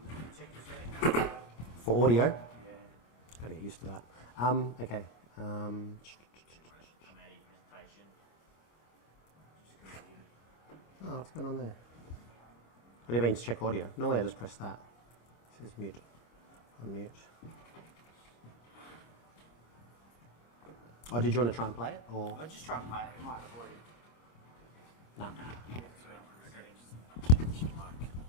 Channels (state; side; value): late; right; 25 ms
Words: Check your settings. For audio? Yeah. Gotta get used to that. Okay. Oh, what's going on there? What do you mean to check audio? Normally I just press that. It says mute. Unmute. Oh, did you want to try and play it? Or? I'll just try and play it. It might have already. No.